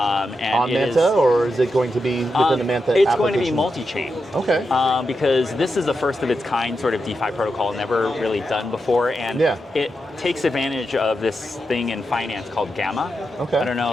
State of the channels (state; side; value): normal; both; correlation 0.87